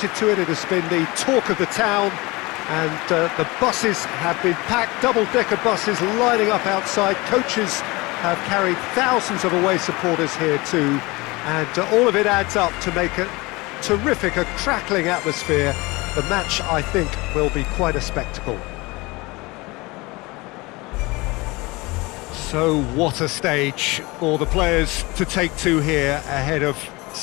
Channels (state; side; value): quieter; right; 23.5 dB